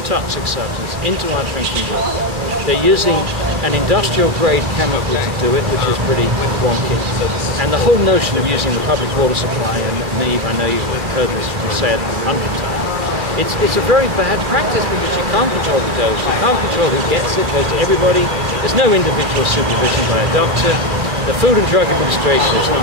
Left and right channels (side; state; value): left; late; 2.4 ms